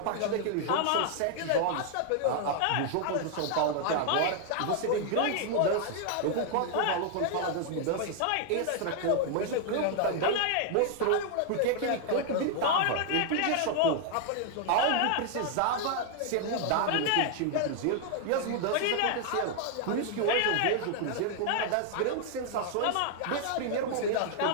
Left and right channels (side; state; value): both; different; correlation 0.00